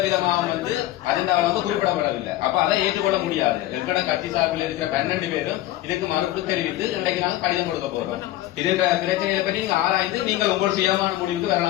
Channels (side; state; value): right; quieter; 15.2 dB